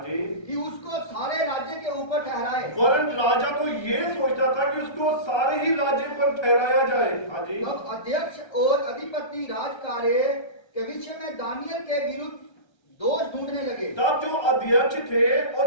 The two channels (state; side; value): late; right; 1.3 ms